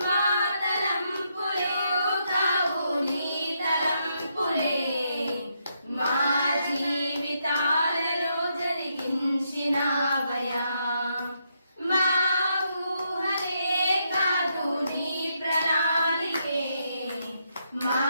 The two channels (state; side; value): inverted; both; correlation -0.79